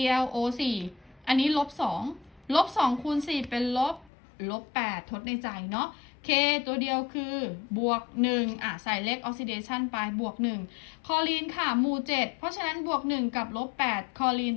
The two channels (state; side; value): drops out; right; at 4.1 s